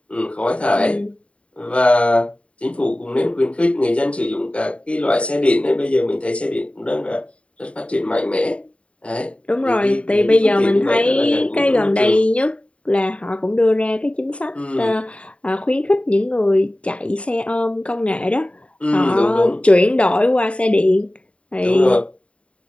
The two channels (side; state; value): right; late; 0.062 ms